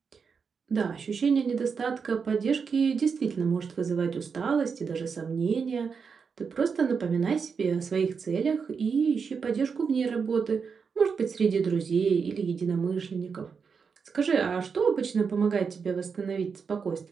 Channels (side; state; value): left; quieter; 5.8 dB